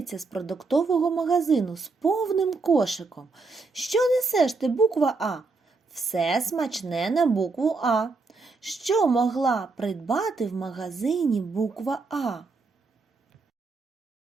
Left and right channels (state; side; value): quieter; left; 4.0 dB